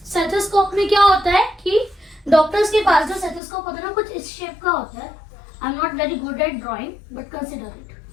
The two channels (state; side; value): drops out; right; at 3.4 s